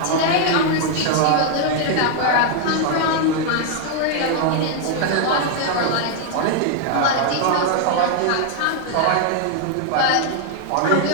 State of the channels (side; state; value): both; different; correlation 0.00